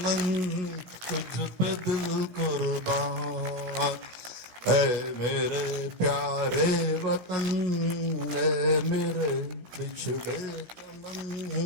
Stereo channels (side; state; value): left; late; 16 ms